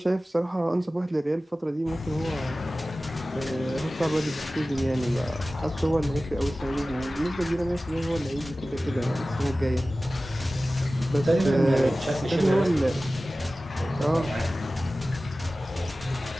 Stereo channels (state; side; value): normal; both; correlation 0.96